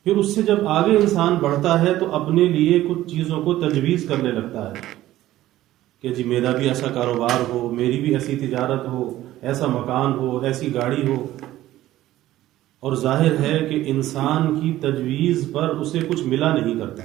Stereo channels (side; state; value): left; quieter; 14.8 dB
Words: پھر اس سے جب آگے انسان بڑھتا ہے تو اپنے لیے کچھ چیزوں کو تجویز کرنے لگتا ہے کہ جی میرا بھی ایسا کاروبار ہو، میری بھی ایسی تجارت ہو، ایسا مکان ہو، ایسی گاڑی ہو۔ اور ظاہر ہے کہ انسان کی تجویز پر اسے کچھ ملا نہیں کرتا،